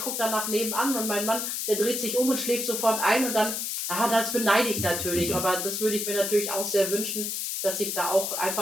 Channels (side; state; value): left; noise; hiss, 2 dB below the sound